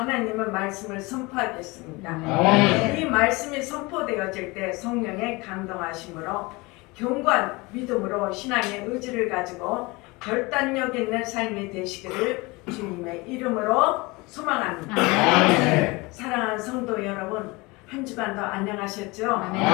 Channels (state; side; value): quieter; right; 24.4 dB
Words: 말씀을 선포하겠습니다. 이 말씀이 선포되어질 때 성령의 감동하심으로 경관 믿음으로 신앙의 의지를 가지고 결단력 있는 삶이 되시기를 주님의 이름으로 소망합니다. 사랑하는 성도 여러분, 한 주간도 안녕하셨죠?